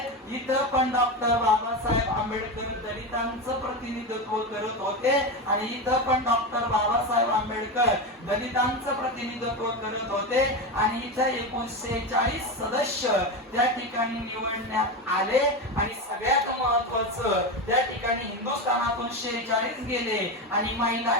इथं पण डॉक्टर बाबासाहेब आंबेडकर दलितांचं प्रतिनिधित्व करत होते आणि इथं पण डॉक्टर बाबासाहेब आंबेडकर दलितांचं प्रतिनिधित्व करत होते. आणि इथे 1940 सदस्य त्या ठिकाणी निवडण्यात आले. आणि सगळ्यात महत्वाचं, त्या ठिकाणी हिंदुस्थानातून 46 गेले आणि महिला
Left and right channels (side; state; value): both; normal; correlation 0.18